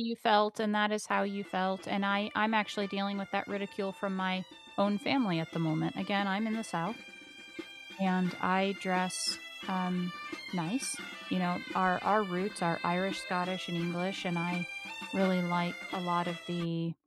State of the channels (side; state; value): both; identical; correlation 1.00